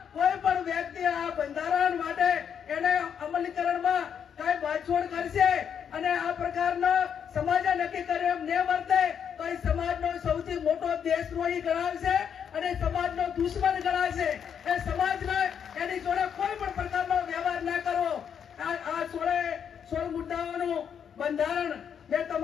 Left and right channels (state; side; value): quieter; right; 7.9 dB